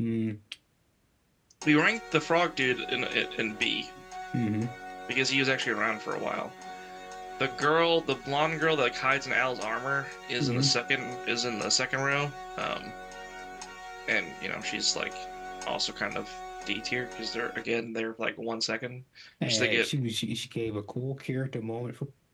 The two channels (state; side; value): identical; both; correlation 1.00